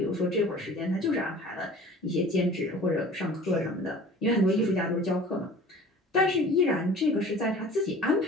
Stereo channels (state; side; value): normal; both; correlation 0.44